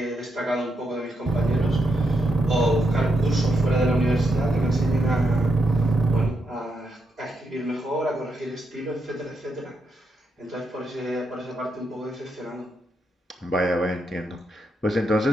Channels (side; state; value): both; normal; correlation 0.82